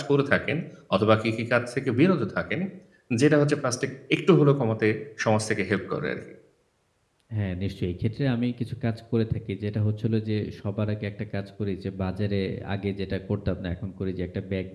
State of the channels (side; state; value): both; identical; correlation 1.00